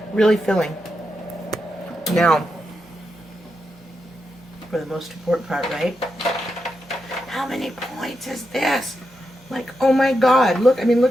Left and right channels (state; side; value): normal; both; correlation 0.86